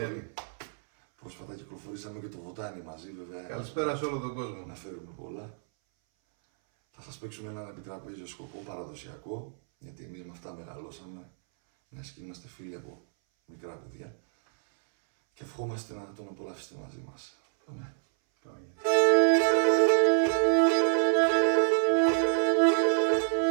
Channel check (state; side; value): silent; left; 58 dB below the other